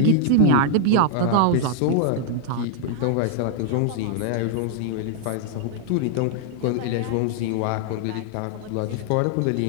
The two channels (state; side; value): different; both; correlation -0.01